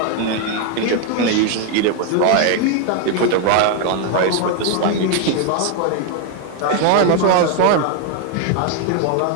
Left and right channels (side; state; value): both; different; correlation 0.01